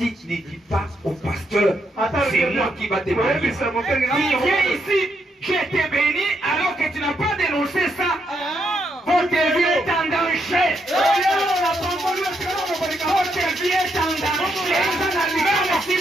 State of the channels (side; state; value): both; normal; correlation 0.78